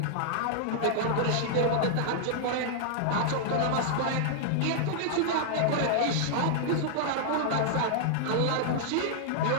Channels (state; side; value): different; both; correlation -0.01